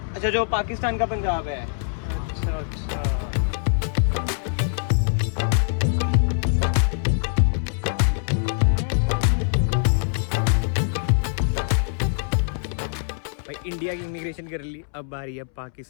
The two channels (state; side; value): silent; right; 63 dB below the other